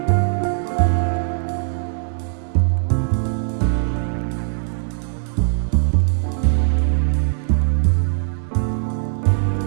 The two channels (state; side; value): silent; left; digital silence